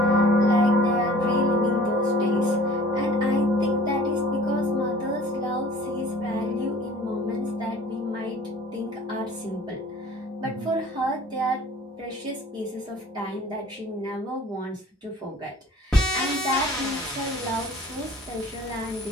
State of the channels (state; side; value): normal; both; correlation 0.48